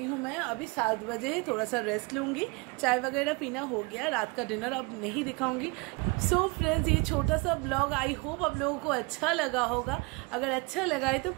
हूँ मैं। अभी 7 बजे है, थोड़ा सा रेस्ट लूँगी, चाय वगैरह पीना हो गया, रात का डिनर अब नहीं दिखाऊंगी। सो फ्रेंड्स, ये छोटा सा ब्लॉग आई होप आप लोगों को अच्छा लगा होगा। अगर अच्छा लगा है तो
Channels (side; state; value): left; quieter; 27.7 dB